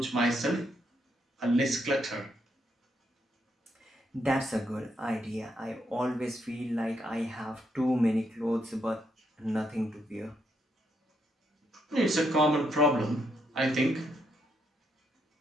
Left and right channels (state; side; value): normal; both; correlation 0.77